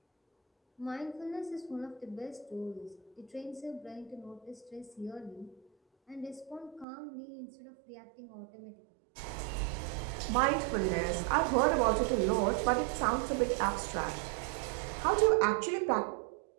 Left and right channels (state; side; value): drops out; left; at 6.9 s